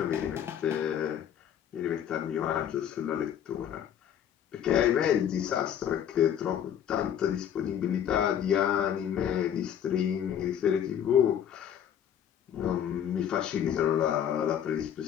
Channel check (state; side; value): quieter; right; 9.5 dB